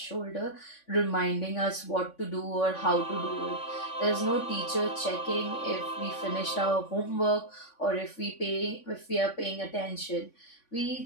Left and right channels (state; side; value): late; right; 3.5 ms